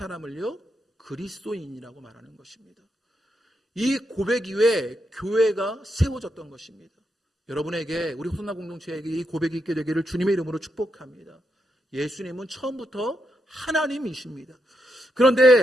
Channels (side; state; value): both; normal; correlation 0.82